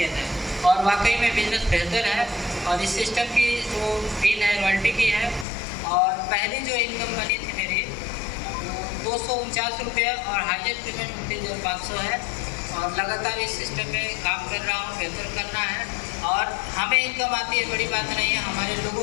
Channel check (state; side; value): drops out; right; at 5.5 s